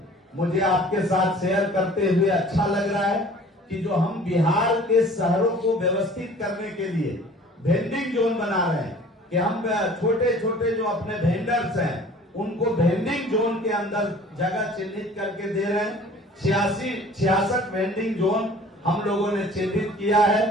मुझे आपके साथ शेयर करते हुए अच्छा लग रहा है कि जो हम बिहार के शहरों को व्यवस्थित करने के लिए वेंडिंग जोन बना रहे हैं, कि हम छोटे छोटे जो अपने वेंडर्स हैं उनको वेंडिंग जोन के अंदर जगह चिन्हित करके दे रहे हैं। 66 वेंडिंग जोन हम लोगों ने चिन्हित किया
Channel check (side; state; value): both; normal; correlation 0.48